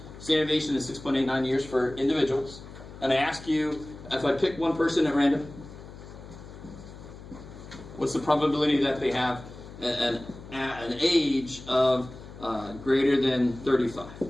Standard deviation is 6.89 years for individuals. And I ask you, if I pick one person at random, what's the probability that they have an age of greater than 35?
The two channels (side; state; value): left; noise; hum, 16 dB below the sound